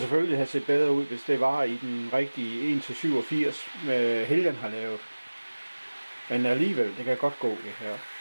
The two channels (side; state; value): both; inverted; correlation -1.00